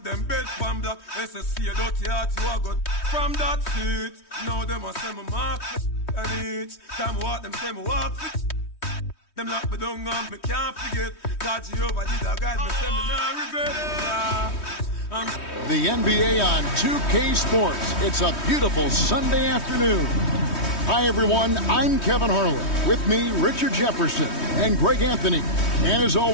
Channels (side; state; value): right; late; 3.2 ms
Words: them bed pan black. SSC a dirty heart you a got from that seat. Now them a say me mark and each time I walk them say me walk fit. Them lock me down and me can't forget. God Jehovah did a guide me, say me not regret it. The NBA on 2K Sports. It's a beautiful Sunday afternoon. Hi everyone, I'm Kevin Harlan. With me, Richard Jefferson and Greg Anthony. And as